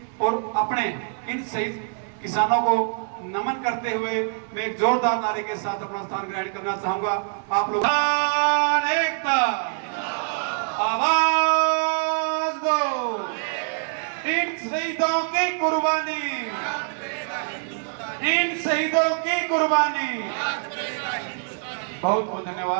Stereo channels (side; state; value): left; silent; digital silence